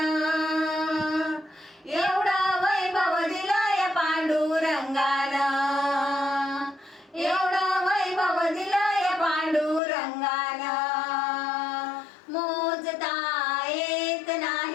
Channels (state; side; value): drops out; right; at 9.8 s